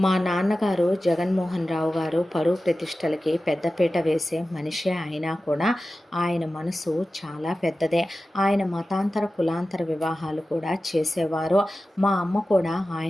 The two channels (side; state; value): both; normal; correlation 0.94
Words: మా నాన్నగారు జగన్మోహన్ రావు గారు పరువు ప్రతిష్టలకి పెద్దపీట వేసే మనిషే అయినా కూడా ఆయన మనసు చాలా పెద్దదే. ఆయన మతాంతర కులాంతర వివాహాలు కూడా చేసేవారు. మా అమ్మ కూడా